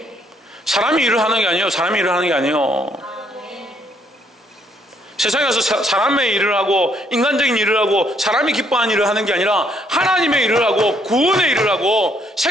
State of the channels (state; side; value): normal; both; correlation 0.69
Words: 사람이 일을 하는 게 아니에요. 사람이 일을 하는 게 아니에요. 세상에서 사람의 일을 하고 인간적인 일을 하고 사람이 기뻐하는 일을 하는 게 아니라 하나님의 일을 하고 구원의 일을 하고